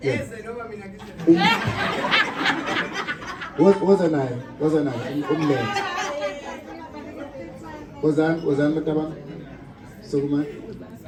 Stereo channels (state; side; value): identical; both; correlation 1.00